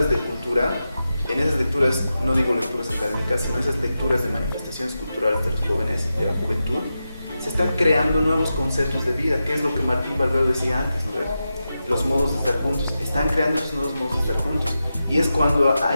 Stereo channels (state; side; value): inverted; both; correlation -0.91